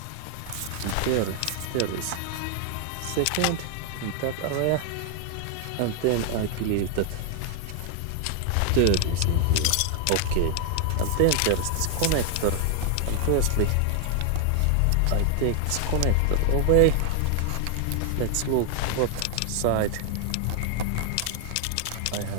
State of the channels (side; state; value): both; different; correlation 0.00